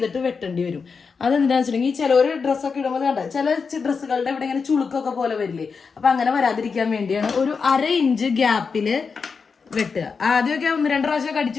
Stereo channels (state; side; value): quieter; right; 5.3 dB